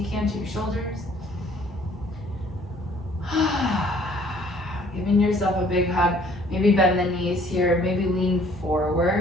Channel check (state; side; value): normal; both; correlation 0.58